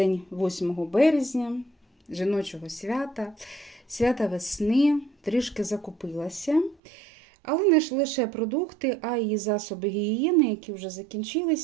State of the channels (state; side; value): drops out; left; at 6.8 s